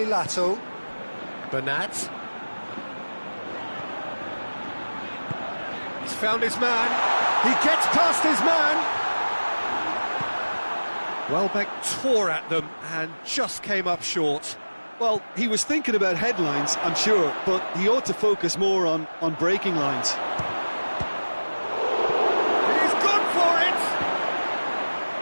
Lato, Bernat. He's found his man. He gets past his man. Welbeck tore at them and just came up short. Well, he was thinking about headlines, I'm sure, but he ought to focus more on breaking lines. He's gone for it.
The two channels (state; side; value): inverted; both; correlation -1.00